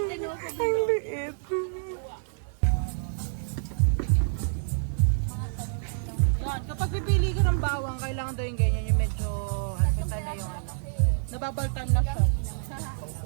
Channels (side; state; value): left; silent; digital silence